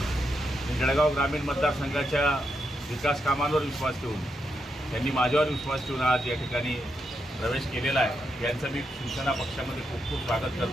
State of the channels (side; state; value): both; normal; correlation 0.83